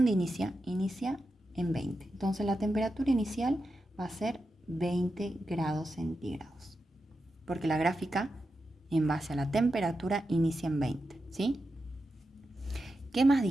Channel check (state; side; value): normal; both; correlation 0.89